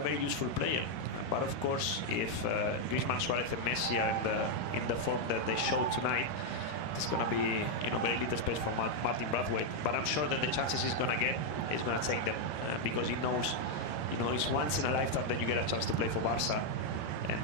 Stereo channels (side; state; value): right; late; 13 ms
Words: very useful player. But of course, if Griezmann, Suarez, and Messi are in the form that they showed tonight, there's going to be, you know, very little space for Martin Braithwaite. But I'm sure that the chances he's going to get, he's going to take them, because he knows, you know, it's once in a lifetime that you get a chance to play for Barca,